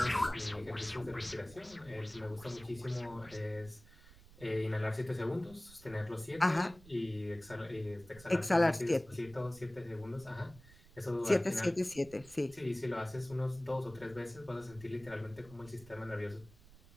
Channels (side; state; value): right; noise; rumble, 21 dB below the sound